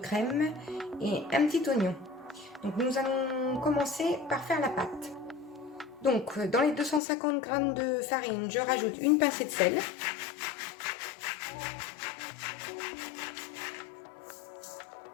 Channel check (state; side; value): drops out; right; at 7.0 s